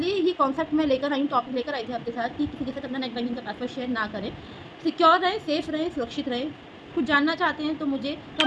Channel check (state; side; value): identical; both; correlation 1.00